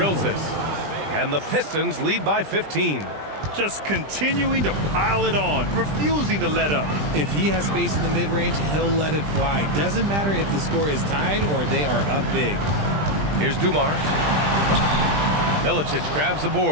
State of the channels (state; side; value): late; left; 20 ms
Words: it. And the Pistons lead by 15. Just continuing to pile it on, refusing to let up. If he has space in the mid-range, he'll let it fly. Doesn't matter if the score is tied or they are up big. Here's Dumars. Milicic grabs the